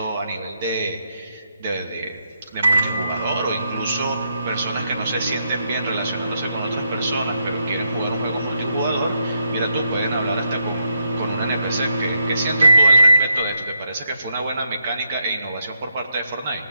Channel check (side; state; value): both; inverted; correlation -0.79